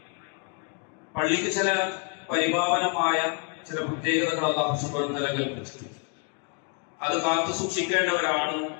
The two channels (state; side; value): quieter; right; 36.9 dB